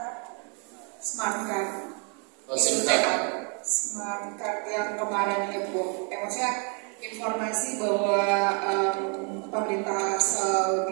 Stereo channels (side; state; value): left; quieter; 38.0 dB